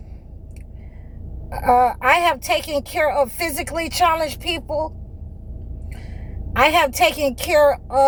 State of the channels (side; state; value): both; identical; correlation 1.00